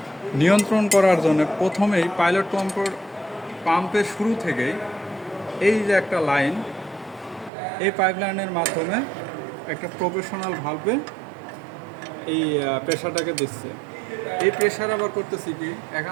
নিয়ন্ত্রণ করার জন্য প্রথমেই পাইলট কন্ট্রোল পাম্পের শুরু থেকেই এই যে একটা লাইন, এই পাইপলাইনের মাধ্যমে একটা প্রফেশনাল ভালভে এই প্রেশারটাকে দিচ্ছে। এই প্রেশার আবার করতেছি কি,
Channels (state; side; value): drops out; left; at 7.5 s